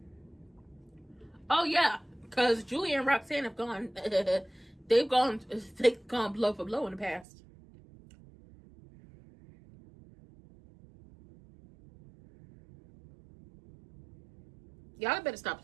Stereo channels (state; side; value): drops out; left; at 7.2 s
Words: Oh yeah, because Julia and Roxanne have gone. they've gone blow for blow in the past. Y'all better stop